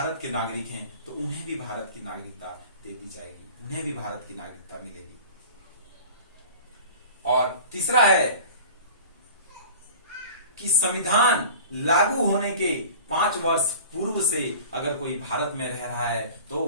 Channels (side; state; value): both; inverted; correlation -0.40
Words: के नागरिक हैं, तो उन्हें भी भारत की नागरिकता दे दी जाएगी, उन्हें भी भारत की नागरिकता मिलेगी। और तीसरा है कि संविधान लागू होने के 5 वर्ष पूर्व से अगर कोई भारत में रह रहा है तो